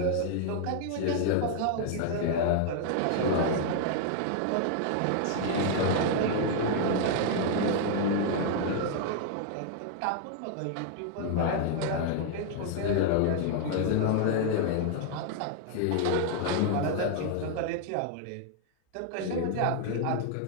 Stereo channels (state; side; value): different; both; correlation 0.00